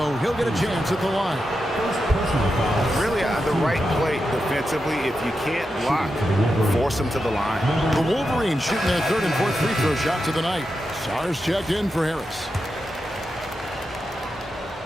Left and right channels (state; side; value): normal; both; correlation 0.88